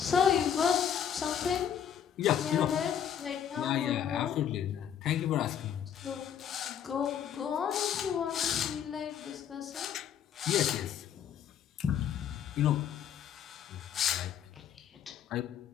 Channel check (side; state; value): right; quieter; 8.9 dB